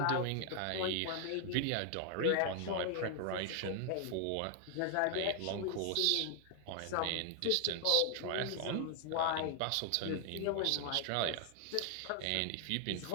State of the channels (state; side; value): different; both; correlation 0.00